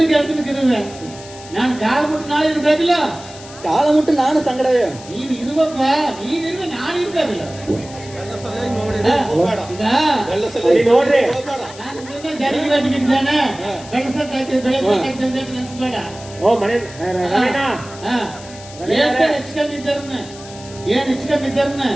ನಾನು ಕಾಲ ಮುಟ್ಟು ನಾಳೆ ಇರ್ಬೇಕಿಲ್ಲ. ಕಾಲ ಮುಟ್ಟು ನಾನು ಸಂಗಡವೇ. ನೀನು ಇರುವಪ್ಪ, ನೀನಿರುವೆ, ನಾನು ಇರ್ಬೇಕಿಲ್ಲ. ನೋಡ್ರಿ ನಾನು ಜಾರಿಗೆ ಬೆಳೆಸಕ್ಕಾಗ್ತದೆ ನೆನ್ಸ್ಬೇಡ. ಓ ಮನೆ ಹೆಚ್ಚು ಕಮ್ಮಿ ಇದ್ದಾರನ್ನ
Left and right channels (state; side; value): noise; left; hiss, 18 dB below the sound